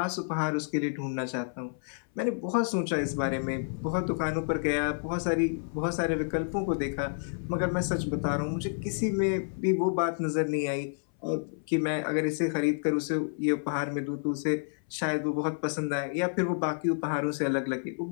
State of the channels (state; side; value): silent; right; 58 dB below the other